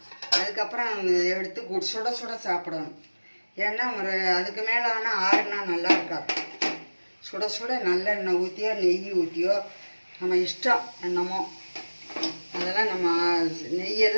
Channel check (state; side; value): inverted; both; correlation -1.00